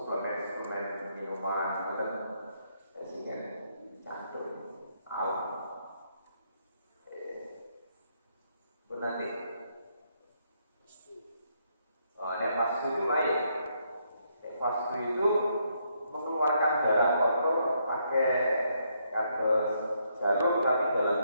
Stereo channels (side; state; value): both; inverted; correlation -0.74